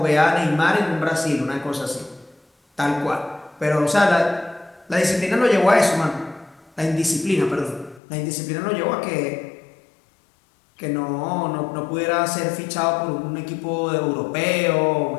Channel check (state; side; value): drops out; right; at 8.0 s